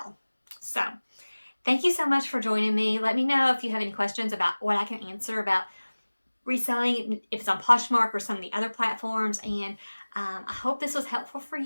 So thank you so much for joining me. Let me know if you have any questions about what I can answer about reselling, if it's on Poshmark or some of the other platforms. And I hope this was helpful for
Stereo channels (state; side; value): inverted; both; correlation -1.00